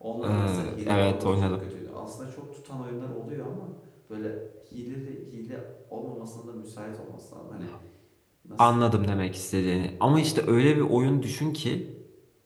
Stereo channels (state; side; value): identical; both; correlation 1.00